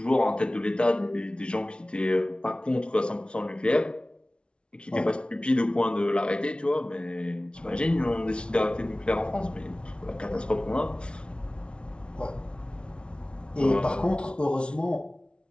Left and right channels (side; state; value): right; late; 0.058 ms